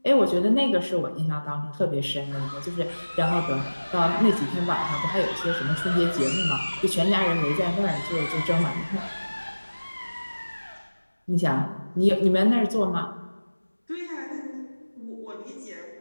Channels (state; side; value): inverted; both; correlation -1.00